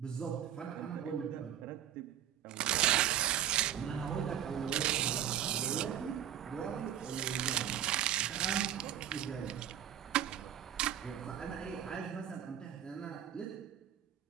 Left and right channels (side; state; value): left; quieter; 10.4 dB